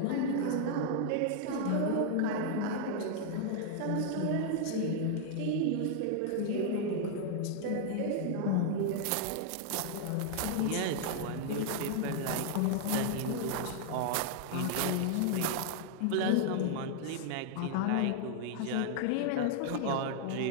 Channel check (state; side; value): different; both; correlation -0.01